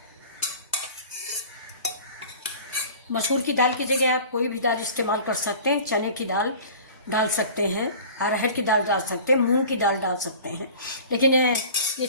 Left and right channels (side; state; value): both; inverted; correlation -0.41